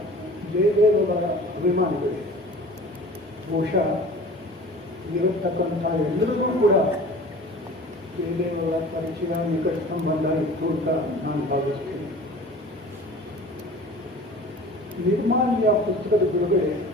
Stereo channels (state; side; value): normal; both; correlation 0.42